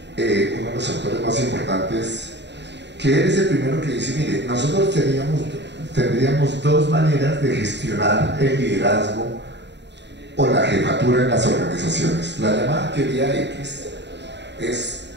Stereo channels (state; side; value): late; left; 0.51 ms